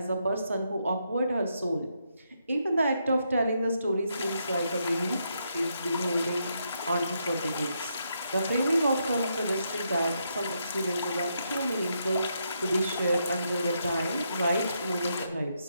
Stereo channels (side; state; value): both; inverted; correlation -0.79